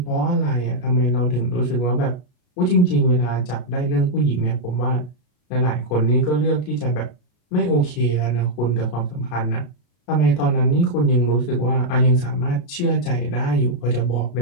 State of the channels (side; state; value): right; late; 33 ms